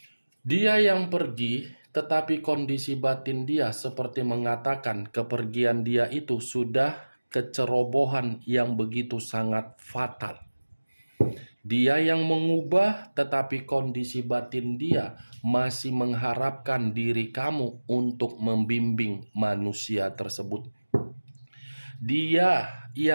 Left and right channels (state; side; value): inverted; both; correlation -1.00